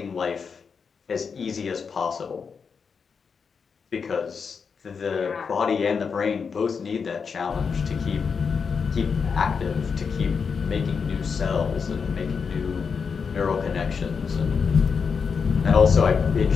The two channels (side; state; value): right; quieter; 5.8 dB